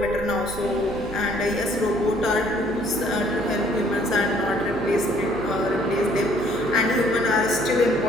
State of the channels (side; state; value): right; noise; hum, 13 dB below the sound